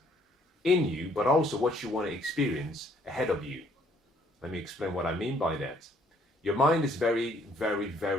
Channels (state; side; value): normal; both; correlation 0.64